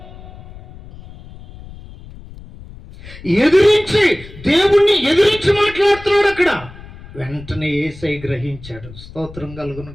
ఎదిరించి, దేవుణ్ణి ఎదిరించి మాట్లాడుతున్నాడు అక్కడ. వెంటనే యేసయ్య గ్రహించాడు. స్తోత్రం కలుగును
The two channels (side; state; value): left; noise; rumble, 17 dB below the sound